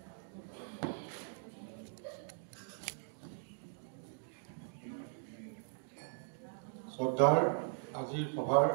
শ্ৰদ্ধাৰ আজিৰ সভাৰ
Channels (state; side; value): silent; left; digital silence